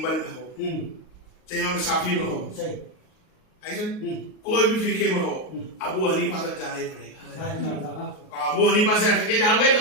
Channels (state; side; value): late; right; 38 ms